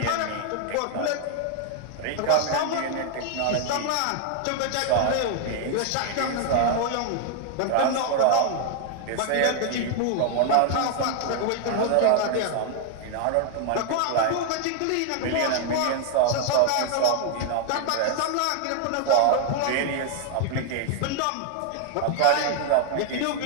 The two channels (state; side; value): different; both; correlation 0.00